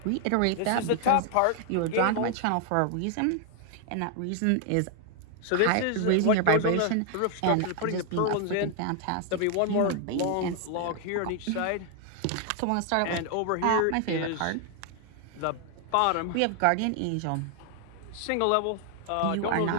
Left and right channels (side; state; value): both; different; correlation 0.00